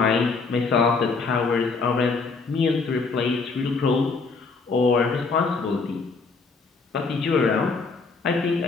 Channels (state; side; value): quieter; right; 4.4 dB